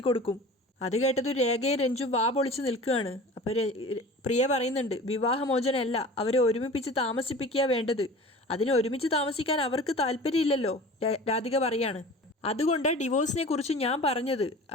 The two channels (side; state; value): both; normal; correlation 0.39